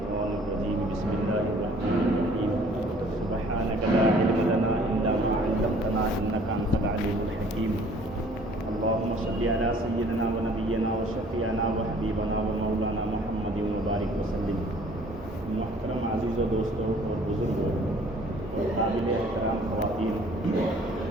الرجيم بسم الله الرحمن الرحيم سبحانك لا علم لنا إلا ما علمتنا إنك أنت العليم الحكيم اللهم صل على سيدنا ونبينا وشفيعنا وحبيبنا ومولانا محمد وبارك وسلم. محترم عزیز و دوستوں اور بزرگوں اور قابل احترام خواتین،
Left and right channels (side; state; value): both; normal; correlation 0.55